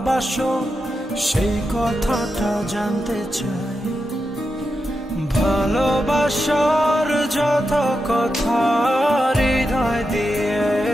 সেই কথাটা জানতে চাই। ভালোবাসার যত কথা হৃদয় দিয়ে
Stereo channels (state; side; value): normal; both; correlation 0.88